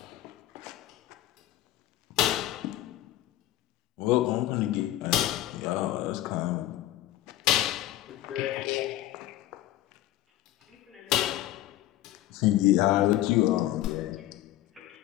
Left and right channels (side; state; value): right; quieter; 14.5 dB